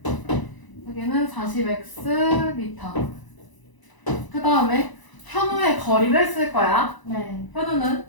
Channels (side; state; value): right; late; 1.0 ms